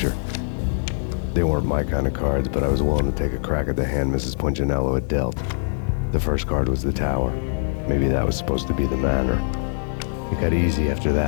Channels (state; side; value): silent; right; 63 dB below the other